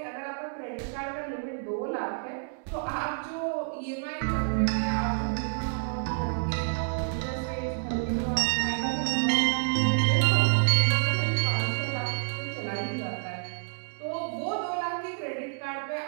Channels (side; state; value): left; silent; digital silence